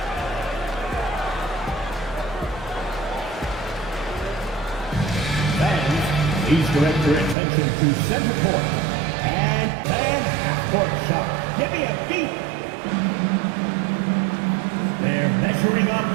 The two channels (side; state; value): left; drops out; at 7.4 s